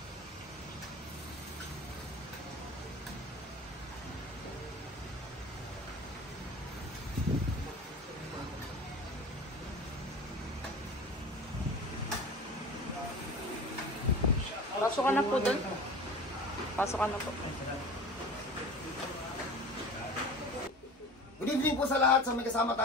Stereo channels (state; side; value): normal; both; correlation 0.37